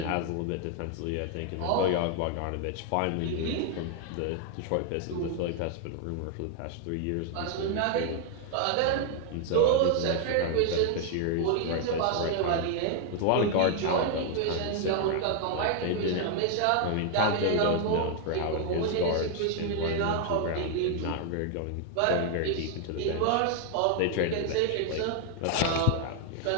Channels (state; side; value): different; both; correlation 0.00